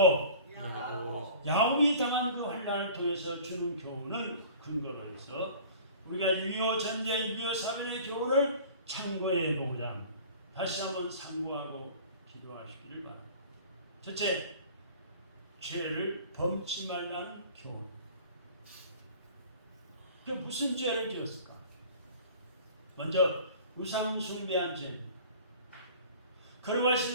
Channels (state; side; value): inverted; both; correlation -0.45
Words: 야곱이 당한 그 환난을 통해서 주는 교훈을 근거로 해서 우리가 6.25 전쟁, 6.25 사변의 교훈을 참고해 보고자 다시 한번 상고하고 기도하시기를 바랍니다. 첫째, 죄를 범치 말라는 교훈. 그 무슨 죄를 지었을까? 먼저 우상 숭배한 죄.